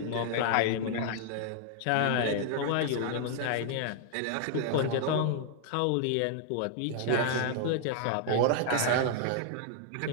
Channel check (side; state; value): both; different; correlation 0.00